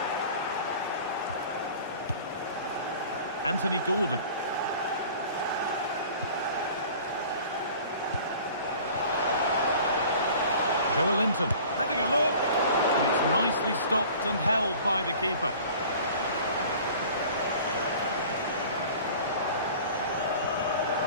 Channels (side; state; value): both; inverted; correlation -0.45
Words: Anthony Gordon. Joe Linton having a look. And it's nicely stopped and held by the keeper.